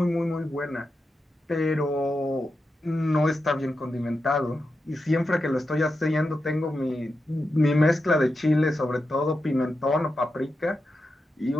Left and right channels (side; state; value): both; normal; correlation 0.89